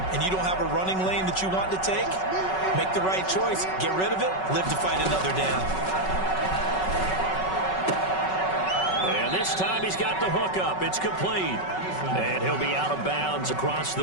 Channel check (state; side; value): late; right; 5.3 ms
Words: and you don't have a running lane that you want to take, make the right choice. Get rid of it. Live to fight another down. And this time he's got the hook up. It's complete. And he'll be out of bounds across the